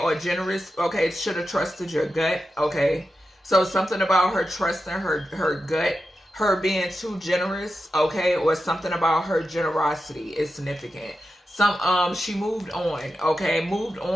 generous. Okay, should have trusted your gut. Okay, so something about her trusting her gut, her being too generous. Okay, or something about her generosity is significant. She moved on. Okay, moved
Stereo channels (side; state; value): both; normal; correlation 0.90